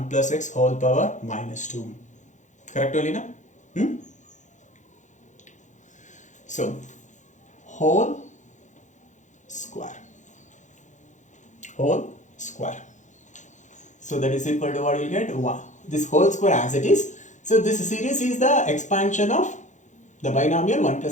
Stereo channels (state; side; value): late; right; 0.35 ms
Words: plus x whole power minus 2. Correct, Olina? So whole square. So that is equal to what you get? 1. This whole square as it is. So this series is the expansion of the binomial 1